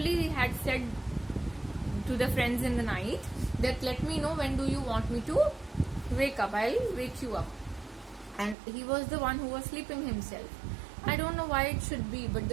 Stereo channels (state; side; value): drops out; left; at 8.6 s